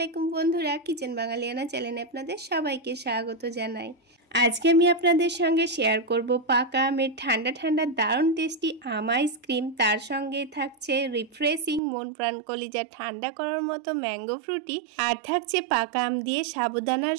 বন্ধুরা, কিচেন বাঙালিয়ানা চ্যানেলে আপনাদের সবাইকে স্বাগত জানাই। আজকে আমি আপনাদের সঙ্গে শেয়ার করব পাকা আমের ঠান্ডা ঠান্ডা দারুণ টেস্টি আম আইসক্রিম। তার সঙ্গে থাকছে রিফ্রেশিং মন প্রাণ কলিজা ঠান্ডা করার মতো ম্যাঙ্গো ফ্রুটি, আর থাকছে পাকা আম দিয়ে সাবুদানার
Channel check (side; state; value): left; drops out; at 11.8 s